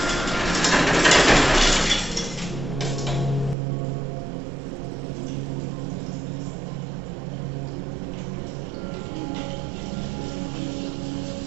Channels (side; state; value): left; drops out; at 3.6 s